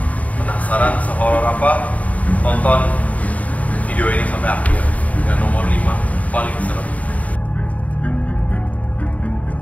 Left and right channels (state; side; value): late; right; 0.070 ms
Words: Penasaran sehoror apa? Tonton video ini sampai akhir. Yang nomor 5 paling serem.